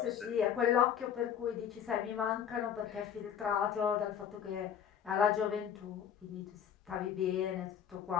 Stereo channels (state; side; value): quieter; right; 8.7 dB